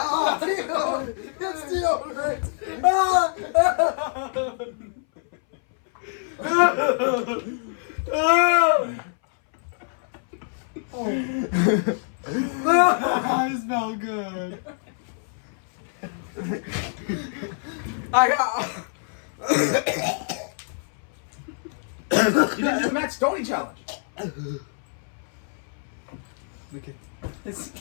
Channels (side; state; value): right; silent; 59 dB below the other